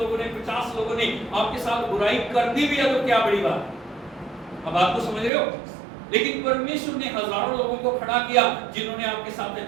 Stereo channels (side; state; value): left; drops out; at 5.3 s